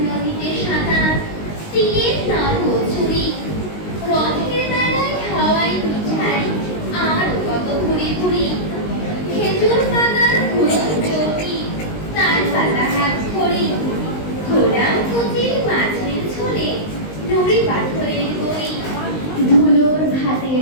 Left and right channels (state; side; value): late; right; 19 ms